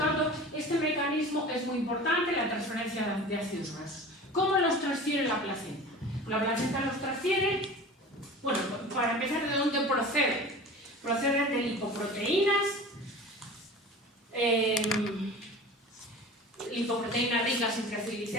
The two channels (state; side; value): normal; both; correlation 0.38